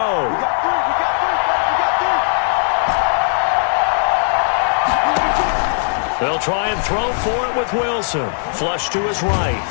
They'll try and throw for it with Wilson. Flush to his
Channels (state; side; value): silent; right; 60 dB below the other